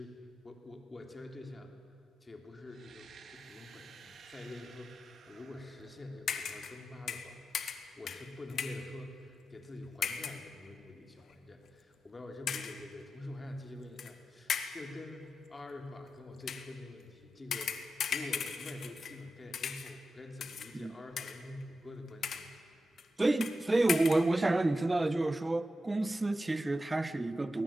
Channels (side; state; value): both; normal; correlation 0.90